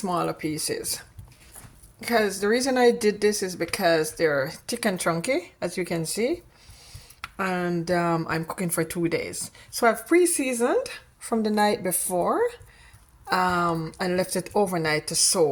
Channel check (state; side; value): identical; both; correlation 1.00